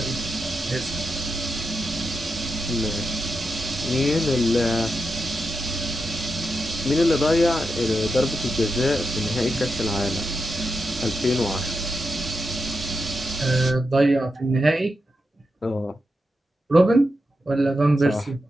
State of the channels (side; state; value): both; normal; correlation 0.86